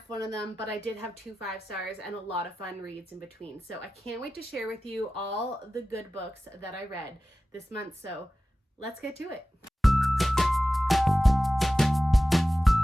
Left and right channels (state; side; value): normal; both; correlation 0.94